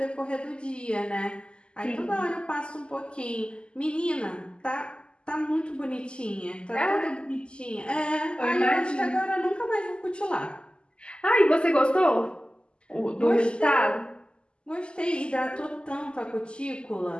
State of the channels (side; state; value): right; late; 0.050 ms